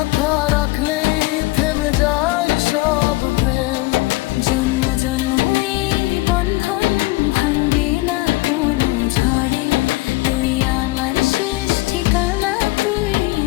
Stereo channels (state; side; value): quieter; right; 21.1 dB